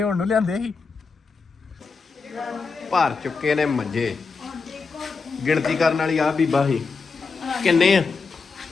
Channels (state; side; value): quieter; right; 4.7 dB